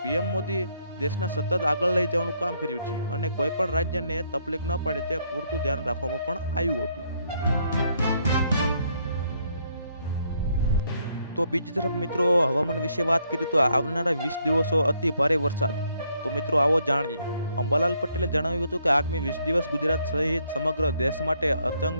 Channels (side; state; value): both; inverted; correlation -0.71